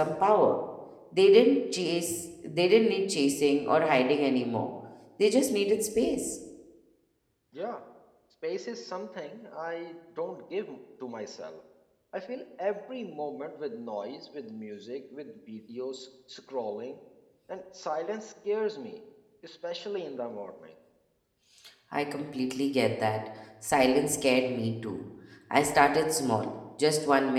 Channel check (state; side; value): identical; both; correlation 1.00